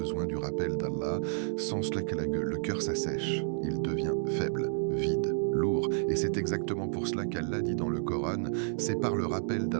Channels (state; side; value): silent; left; 57 dB below the other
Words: du rappel d'Allah. Sans cela, le cœur s'assèche. Il devient faible, vide, lourd. Et c'est exactement pour cela qu'Allah dit dans le Coran, c'est par le rappel